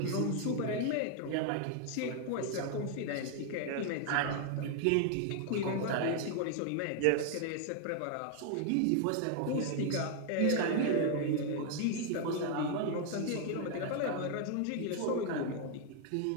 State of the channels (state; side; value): different; both; correlation 0.00